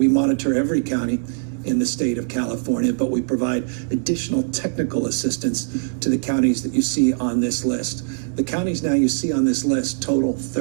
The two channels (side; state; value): left; silent; 64 dB below the other